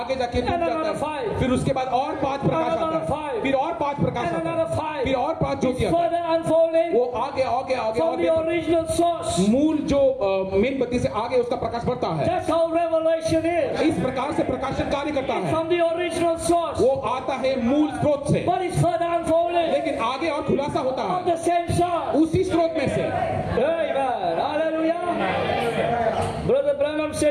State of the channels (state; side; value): identical; both; correlation 1.00